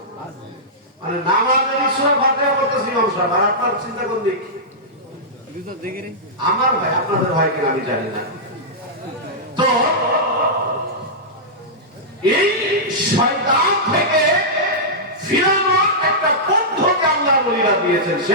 মানে নামাজের ঈশ্বর ফাতিহা করতেছি ইমাম সাহেব, আর আপনার চিন্তা কোন দিক? আমার ভাই, আপনাদের ভাই কিনা আমি জানি না। তো এই শয়তান থেকে ফিরানোর একটা পদ্ধতি আল্লাহর ওলিরা দিয়েছেন,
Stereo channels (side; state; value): both; normal; correlation -0.12